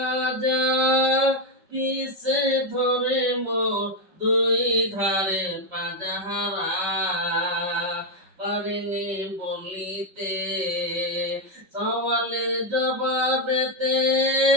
পিছে ধরে মোর দুই ধারে পাজাহারা পারিনি বলিতে সওয়ালের জবাবেতে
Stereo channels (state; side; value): late; left; 5.4 ms